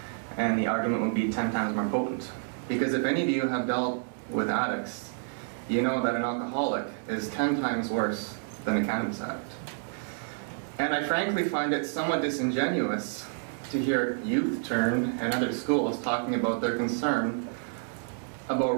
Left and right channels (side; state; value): left; silent; digital silence